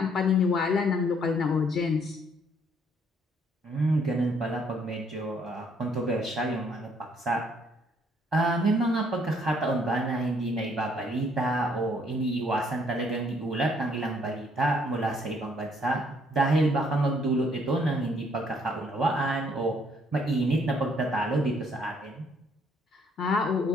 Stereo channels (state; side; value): normal; both; correlation 0.66